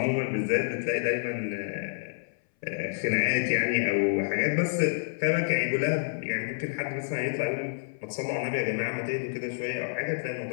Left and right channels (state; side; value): silent; right; 59 dB below the other